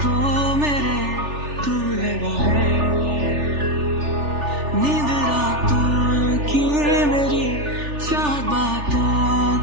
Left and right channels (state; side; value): late; left; 3.4 ms